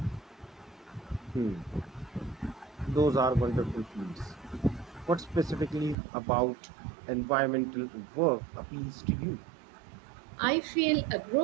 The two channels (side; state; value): left; drops out; at 6.0 s